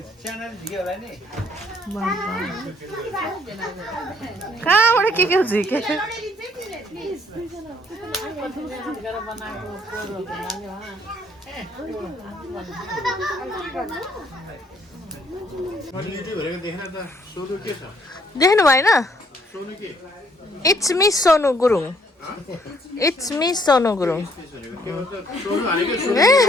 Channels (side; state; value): both; normal; correlation 0.65